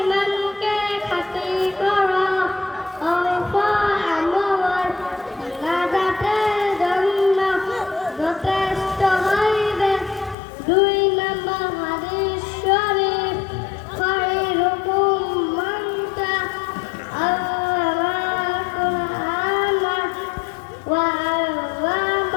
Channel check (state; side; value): drops out; right; at 10.4 s